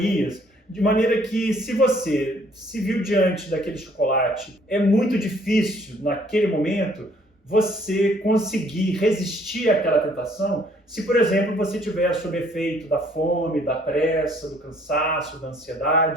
De maneira que, se você se viu diante daquele chocolate, é muito difícil, naquele momento, você conseguir resistir àquela tentação se, por exemplo, você estiver sob efeito da fome, da pressa, do cansaço, da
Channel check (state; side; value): normal; both; correlation 0.62